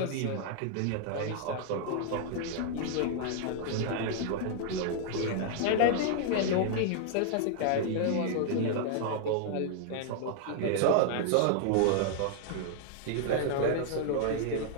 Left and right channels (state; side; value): different; both; correlation -0.01